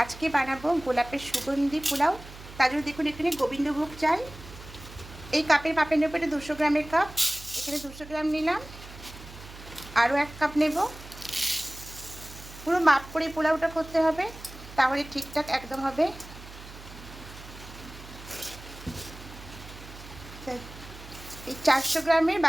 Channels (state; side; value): noise; right; hum, 16 dB below the sound